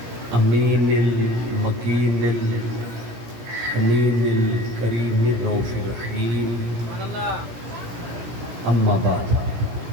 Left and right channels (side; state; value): left; late; 17 ms